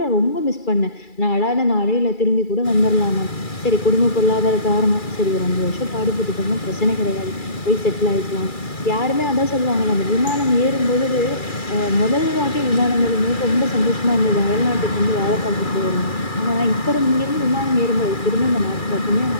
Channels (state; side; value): late; right; 2.3 ms